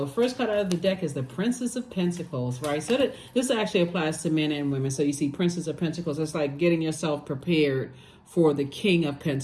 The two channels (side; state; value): both; identical; correlation 1.00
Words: First card out of the deck is the Princess of Pentacles, right? So this actually applies to men and women. So you see Princess of Pentacles. It's like getting yourself prepared for the King of